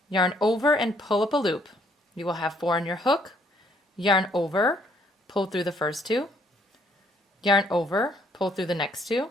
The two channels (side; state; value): both; normal; correlation 0.66